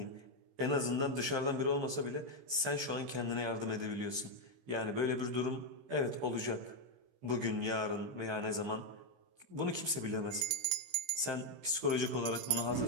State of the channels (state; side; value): late; left; 15 ms